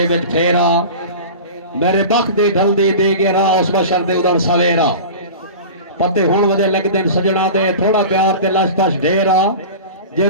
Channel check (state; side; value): inverted; both; correlation -0.34